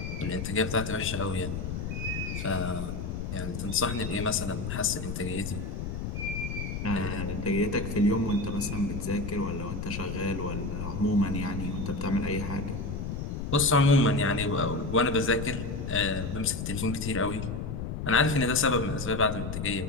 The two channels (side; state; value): left; noise; rumble, 4 dB below the sound